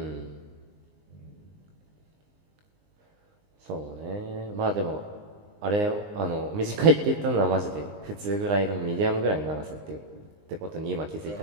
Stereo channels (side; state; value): left; late; 19 ms